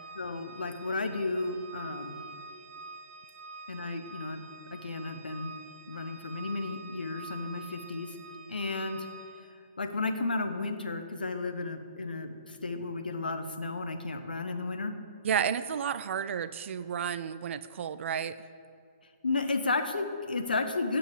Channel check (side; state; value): both; inverted; correlation -0.59